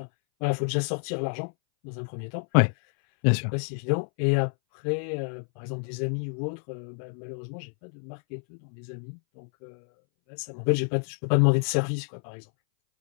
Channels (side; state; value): right; silent; 59 dB below the other